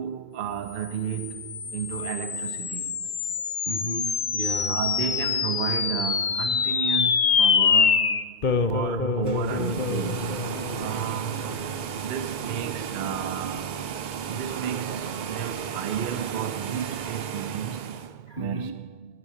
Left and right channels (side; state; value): right; late; 2.2 ms